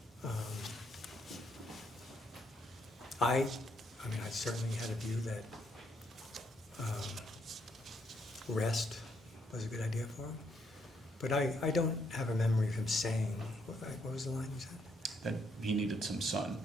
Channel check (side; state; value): both; normal; correlation 0.74